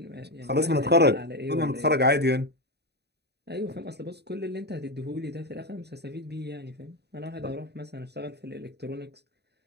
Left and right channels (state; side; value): late; left; 0.48 ms